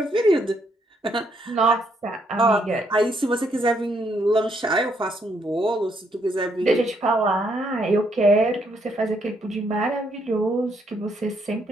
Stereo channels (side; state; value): both; normal; correlation 0.73